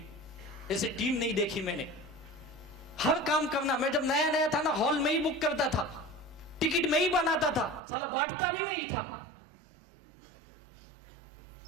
ऐसी टीम नहीं देखी मैंने। हर काम करना। मैं जब नया नया था ना, हॉल में ही बुक करता था, टिकट में ही बनाता था, साला बांटता भी मैं ही था।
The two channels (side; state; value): left; drops out; at 7.8 s